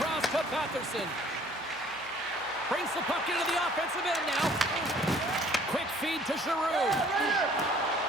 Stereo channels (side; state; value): right; noise; hum, 27 dB below the sound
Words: to Batherson. Brings the puck into the offensive end now. Quick feed to Giroux.